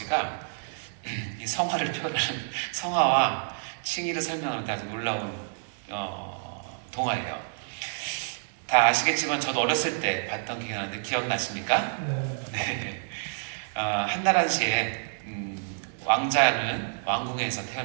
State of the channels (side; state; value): left; silent; digital silence